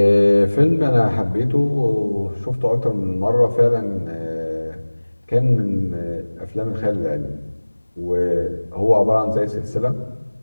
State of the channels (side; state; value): both; inverted; correlation -1.00